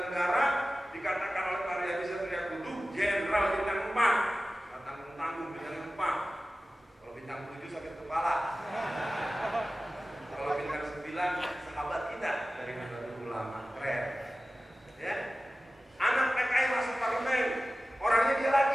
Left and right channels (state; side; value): normal; both; correlation 0.96